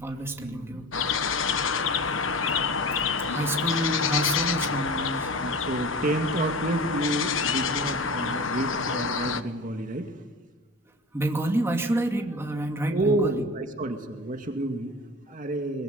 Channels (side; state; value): both; normal; correlation 0.34